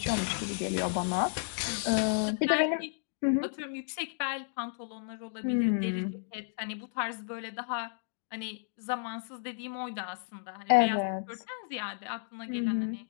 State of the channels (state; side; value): silent; right; digital silence